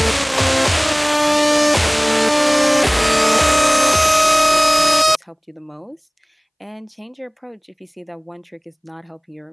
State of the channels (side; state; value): both; identical; correlation 1.00